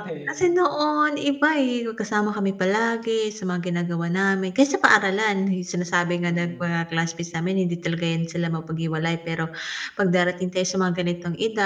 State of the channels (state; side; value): identical; both; correlation 1.00